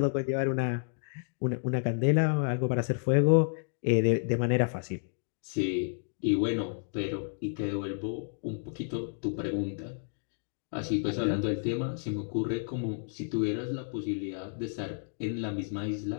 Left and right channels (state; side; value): silent; right; digital silence